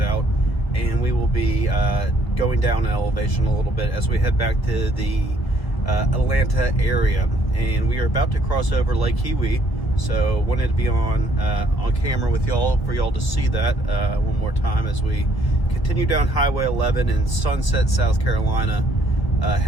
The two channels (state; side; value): late; right; 1.7 ms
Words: and we will be going down in elevation a little bit as we head back to the Atlanta area, and we are about to cross over Lake Kiwi. So wanted to be on camera with y'all for y'all to see that one more time as we continue down Highway 11 in Sunset, South Carolina,